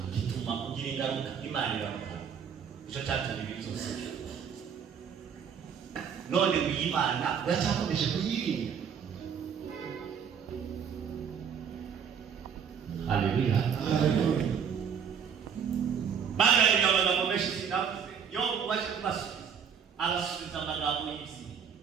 gituma ugira ingaruka Imana iramuha icyo cyatumye ibintu byose none Imana yacyakomeje kuyirinda. Haleluya. Bagaraga amagambo menshi sinavuze yo mubashe kubasubiza arasubiza amagambo y'isi.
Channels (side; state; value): left; quieter; 7.3 dB